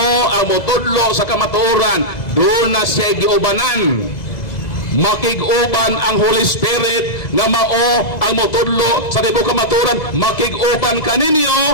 ang motudlo sa kamatuoran. Doon na siya giubanan. Makig-uban ang Holy Spirit nga mao ang motudlo sa tibuok kamatuoran. Makig-uban kaninyo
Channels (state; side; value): late; right; 2.0 ms